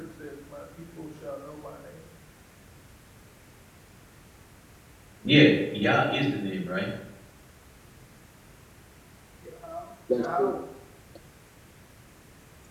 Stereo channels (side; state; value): both; identical; correlation 1.00